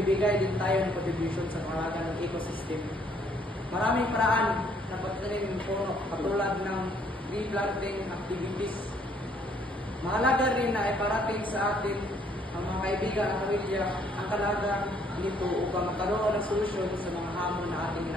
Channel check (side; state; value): both; normal; correlation 0.65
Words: din tayo ng contribution sa pangalaga ng ecosystem. Maraming paraan na pagtanim ng puno, katulad ng tree planting activities. Mahalaga rin na iparating sa atin ang mga kaibigan at pamilya ang kalagang nito upang magkaroon ng solusyon sa mga hamon na ating